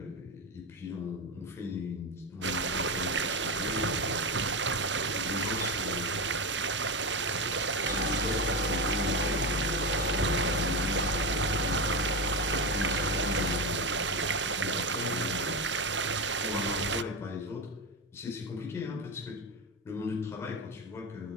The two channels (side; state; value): both; normal; correlation 0.16